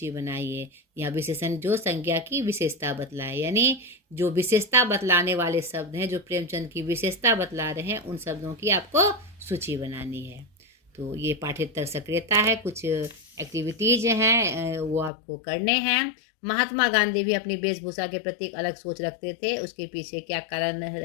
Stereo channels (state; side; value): drops out; right; at 15.1 s